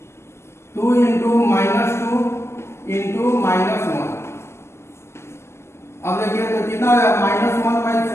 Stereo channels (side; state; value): right; late; 0.13 ms